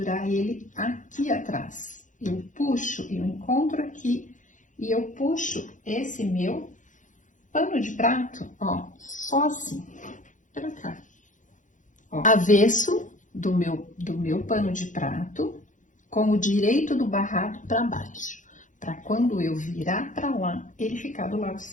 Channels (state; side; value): late; right; 0.37 ms